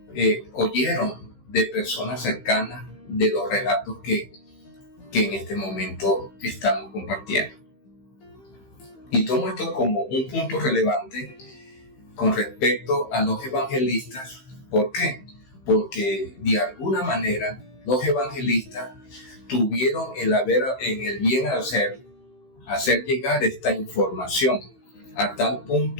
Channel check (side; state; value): right; late; 15 ms